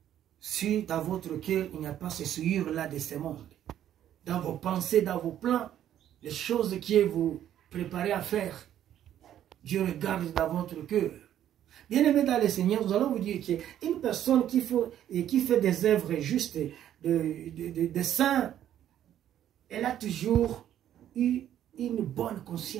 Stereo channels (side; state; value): left; quieter; 11.0 dB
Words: Si dans votre cœur, il n'y a pas ce souillure-là de ce monde, dans vos pensées, dans vos plans, les choses que vous préparez à faire, Dieu regarde dans votre cœur. Bien-aimés dans le Seigneur, nous allons vous dire qu'une personne qui fait des œuvres justes, de saints, elle a toujours eu une bonne